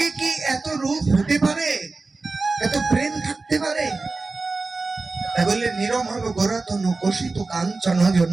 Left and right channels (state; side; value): quieter; left; 3.7 dB